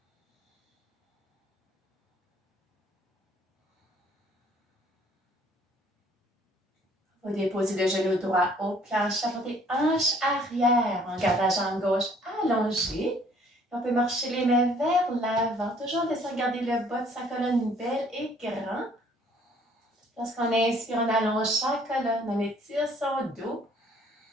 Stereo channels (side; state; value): both; normal; correlation 0.59